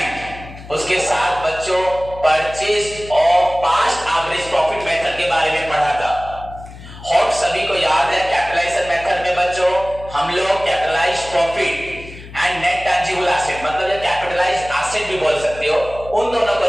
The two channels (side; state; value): left; noise; hum, 16 dB below the sound